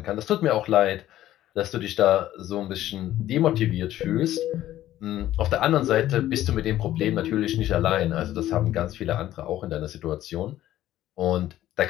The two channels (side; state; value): right; quieter; 13.6 dB